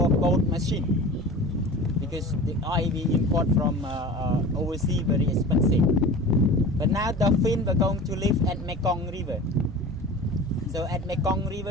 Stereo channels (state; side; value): normal; both; correlation 0.37